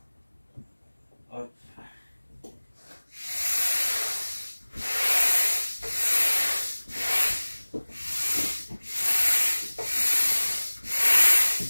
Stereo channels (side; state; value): both; inverted; correlation -1.00